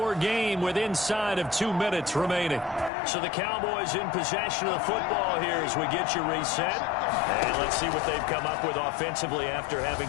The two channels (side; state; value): right; drops out; at 2.9 s